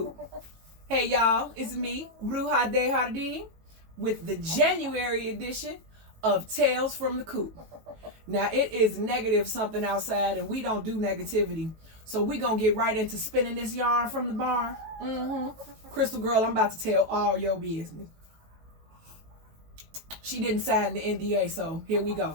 Hey y'all, it's me, Bruja de Jardin, with the January edition of Tales from the Coop. Now it is negative something outside and we don't do negativity. So we gonna get right into spinning this yarn from the barn. Crystal girl, I'm about to tell all your business. She didn't sign the NDA, so here we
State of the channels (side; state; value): left; late; 18 ms